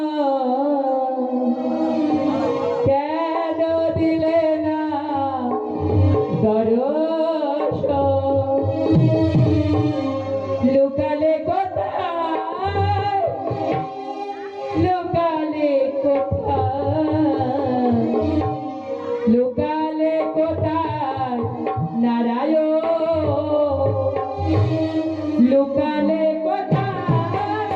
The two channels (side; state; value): both; identical; correlation 1.00